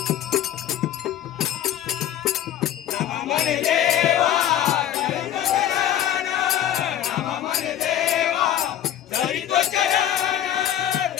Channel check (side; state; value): right; quieter; 11.3 dB